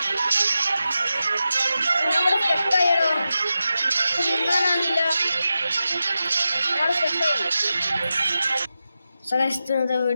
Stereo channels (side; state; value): both; inverted; correlation -0.91